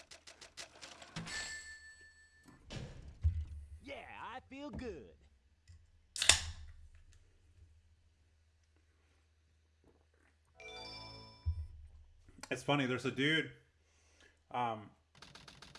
Yeah, I feel good. It's funny, there's a dude that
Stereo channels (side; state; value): both; identical; correlation 1.00